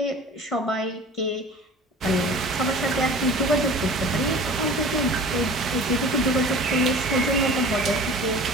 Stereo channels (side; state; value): both; normal; correlation 0.41